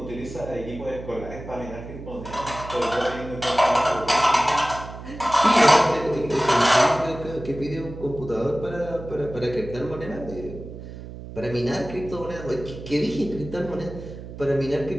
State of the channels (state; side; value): noise; right; hum, 12 dB below the sound